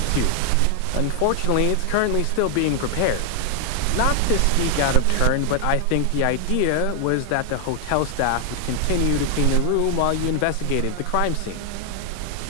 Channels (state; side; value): different; both; correlation 0.00